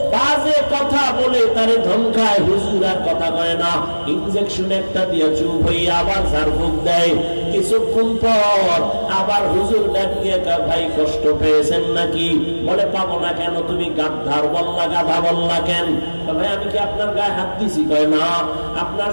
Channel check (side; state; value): both; inverted; correlation -1.00